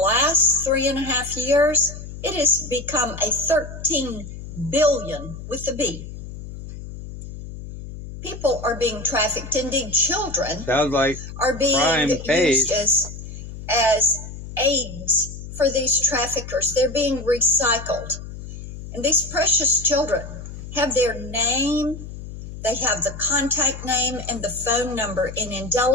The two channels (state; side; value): noise; left; hum, 11 dB below the sound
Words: 3.5 years, it has become a 13 billion with a B. People are being trafficked. Indeed, children sounds like are being pays. used as aids for these traffickers. They're being recycled. And these precious children have their name, they have the contact name and the phone number in